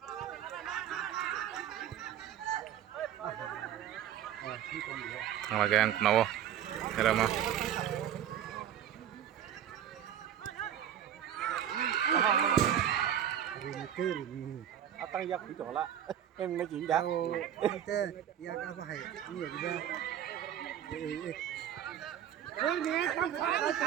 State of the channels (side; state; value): left; quieter; 10.2 dB